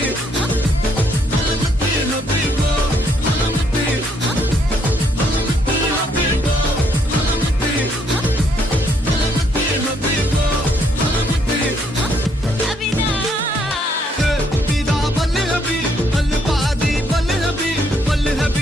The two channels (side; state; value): both; normal; correlation 0.70